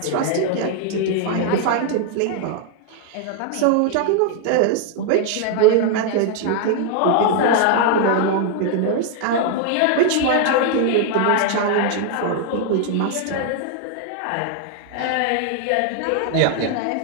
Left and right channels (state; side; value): different; both; correlation 0.00